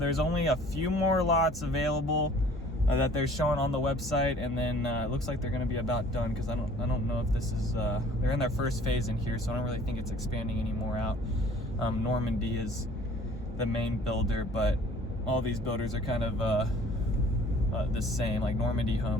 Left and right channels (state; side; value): normal; both; correlation 0.52